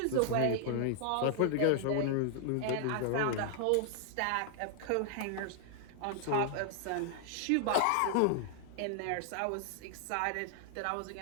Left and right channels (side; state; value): both; different; correlation 0.00